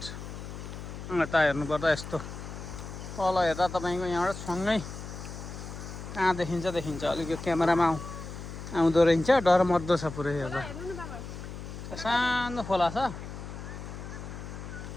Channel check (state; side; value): noise; left; hum, 10 dB below the sound